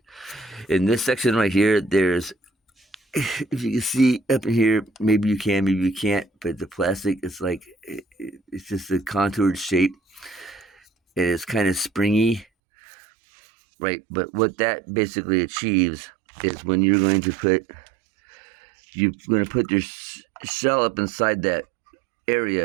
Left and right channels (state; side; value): drops out; left; at 12.5 s